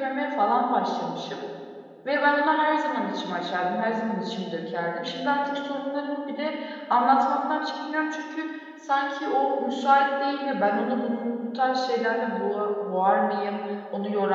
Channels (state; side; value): identical; both; correlation 1.00